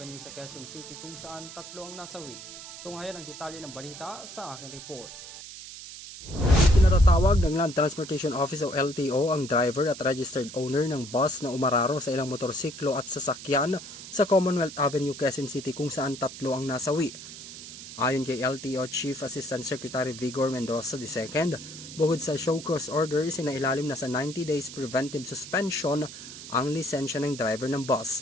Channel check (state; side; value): noise; right; hiss, 13 dB below the sound